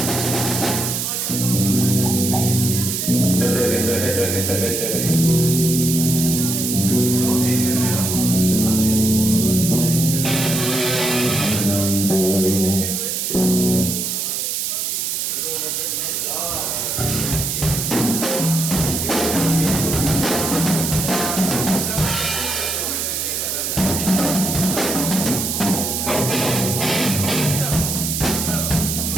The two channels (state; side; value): noise; right; hiss, 1 dB below the sound